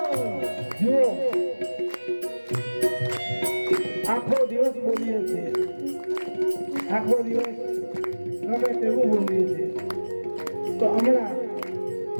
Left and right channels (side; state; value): both; inverted; correlation -1.00